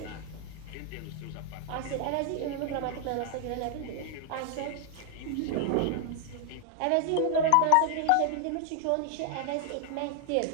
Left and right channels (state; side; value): different; both; correlation 0.00